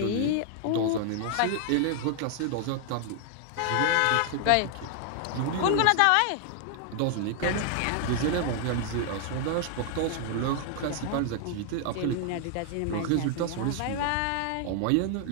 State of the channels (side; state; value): both; different; correlation 0.00